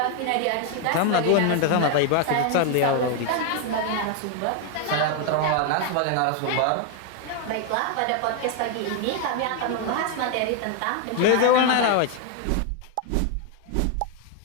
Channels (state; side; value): different; both; correlation 0.00